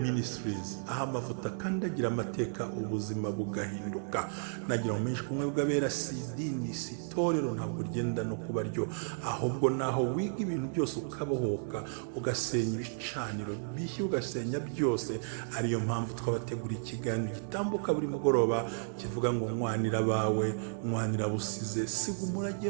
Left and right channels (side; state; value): left; silent; 56 dB below the other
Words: aho amavuta kandi agira amateka ubuzima bugahinduka. Nagira umenyesha ubumwe bw'abera si idini si itorero ntabwo rigenda no kuba ryo ahubwo naho wiga ibintu byose ukabohoka ugasenya ibicaniro bishya ugasenya byose. Ariyo mpamvu twabategura ikiganiro gitambuka buri mugoroba kivuga ngo mwanira bawe mwanira busize siga umurage